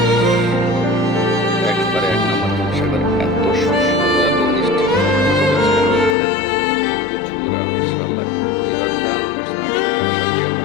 একবারে এক নম্বর হিমসাগর। এত সুস্বাদু, এত মিষ্টি, প্রচুর আম ইনশাআল্লাহ। এবার দাম করছে, আগামী আশা করি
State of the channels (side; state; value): right; drops out; at 6.2 s